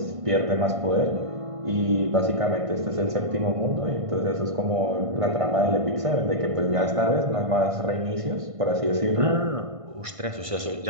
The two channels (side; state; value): left; late; 1.5 ms